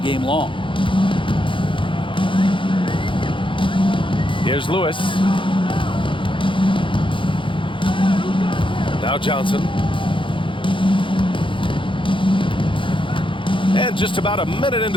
long? Here's Lewis. Now Johnson. And just about a minute into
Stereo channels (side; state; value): right; late; 0.25 ms